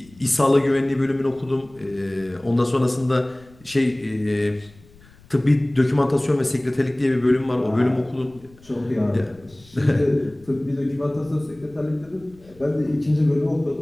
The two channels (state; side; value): noise; left; rumble, 26 dB below the sound